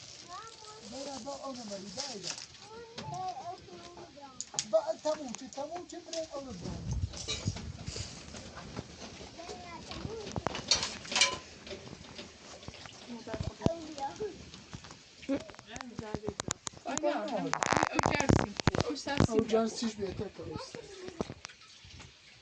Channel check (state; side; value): identical; both; correlation 1.00